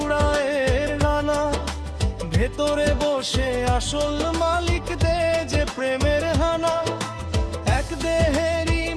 ডানা, ভেতরে বসে আসল মালিক দে যে প্রেমের হানা। এক দেহেরই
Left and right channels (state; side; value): identical; both; correlation 1.00